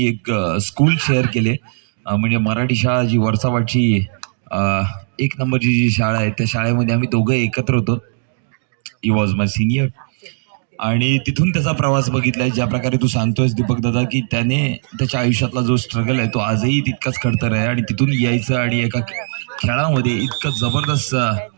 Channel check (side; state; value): left; silent; digital silence